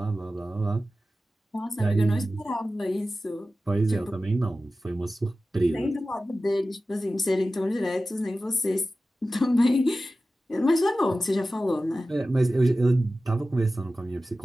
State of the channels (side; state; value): both; normal; correlation 0.94